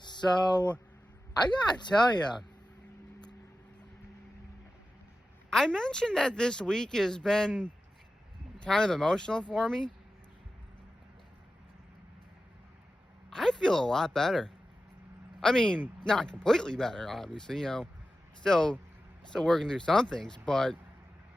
I gotta tell you, I mentioned that this week has been kind of emotional for me. I feel a lot better. I mean, not completely better, obviously, still working through some things, but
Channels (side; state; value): both; normal; correlation 0.93